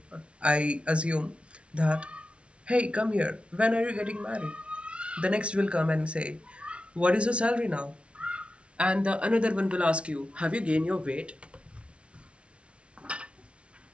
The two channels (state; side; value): late; left; 0.060 ms